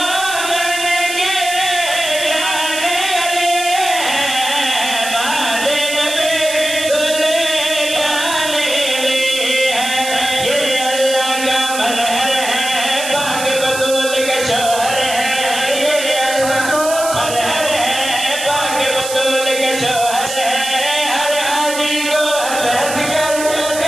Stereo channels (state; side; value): noise; right; hiss, 7 dB below the sound